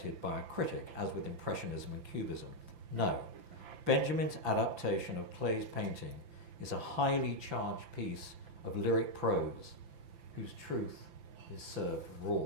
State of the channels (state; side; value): late; left; 5.9 ms